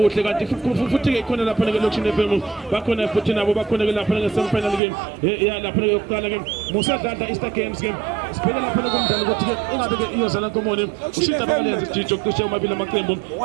kanti futhi ke khona lapha ke Loction FM bakhona futhi nabo bakhona ke lapha ke semi final game ya lapha ke yokuqala ke musadla Easter Games game siphela lapha kumdlalo ukuthi ke ingabe ke iyozala nkomoni ushita bakalenza jijo kushe amabili amaqembu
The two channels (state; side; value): drops out; left; at 4.8 s